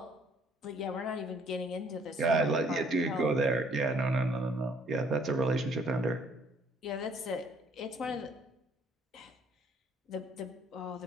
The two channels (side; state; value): both; normal; correlation 0.62